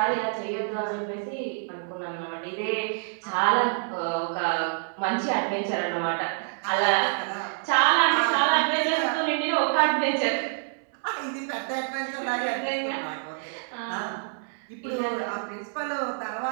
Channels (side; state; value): left; silent; digital silence